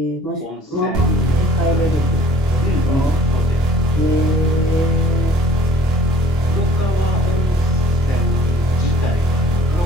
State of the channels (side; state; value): both; normal; correlation 0.56